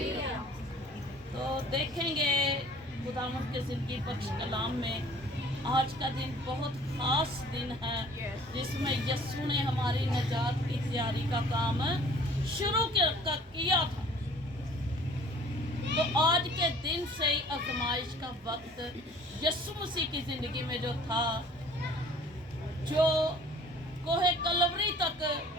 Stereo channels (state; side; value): normal; both; correlation 0.51